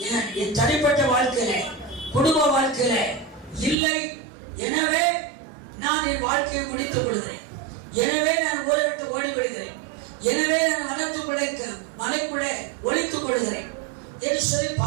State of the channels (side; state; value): left; drops out; at 3.8 s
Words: என் தனிப்பட்ட வாழ்க்கையில, குடும்ப வாழ்க்கையில இல்லை. எனவே நான் என் வாழ்க்கையை முடித்துக் கொள்கிறேன். எனவே நான் ஊரை விட்டு ஓடி விடுகிறேன். எனவே நான் வனத்துக்குள்ளே, மலைக்குள்ளே ஒளித்துக் கொள்கிறேன் என்று சொல்லி